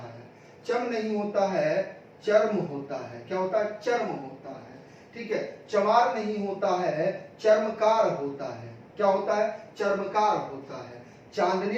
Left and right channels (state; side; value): identical; both; correlation 1.00